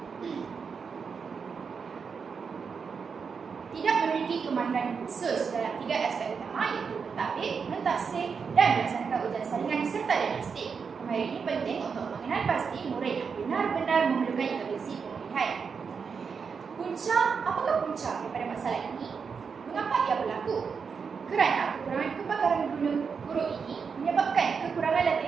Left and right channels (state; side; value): quieter; left; 5.8 dB